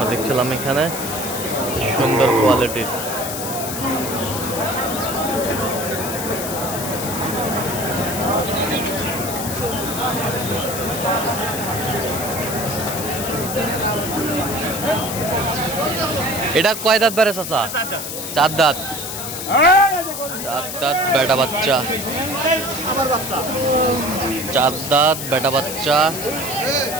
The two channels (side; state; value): left; noise; hiss, 6 dB below the sound